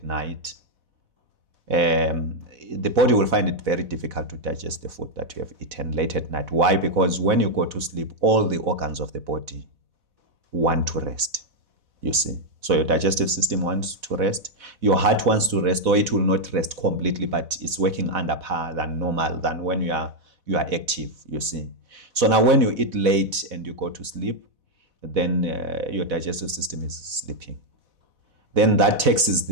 night, the body will find it very difficult to digest the food that you have eaten late at night. Why? Because when you go to sleep, all the organs of the body want to rest, you see. So your digestive system wants to rest, your heart wants to rest, or it will not rest completely, but it's working under par than normal, than when you are active, you see. So now when you eat late and you go to sleep, then your digestive system is sleeping. Then that taxes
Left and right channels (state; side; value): late; left; 4.1 ms